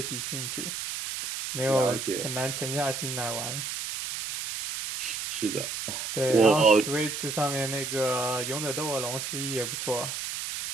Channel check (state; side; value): noise; right; hiss, 5 dB below the sound